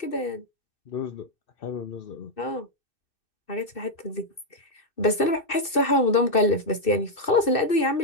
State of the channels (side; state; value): right; late; 2.6 ms